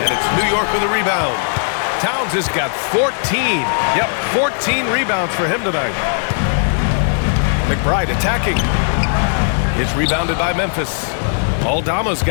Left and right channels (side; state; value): right; silent; digital silence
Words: And it's New York with a rebound. Towns has got 14. Yep, 14 rebounds for him tonight. McBride attacking. It's rebounded by Memphis. Aldama's